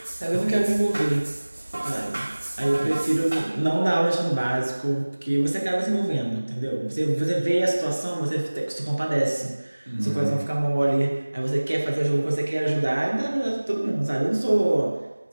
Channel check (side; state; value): both; inverted; correlation -1.00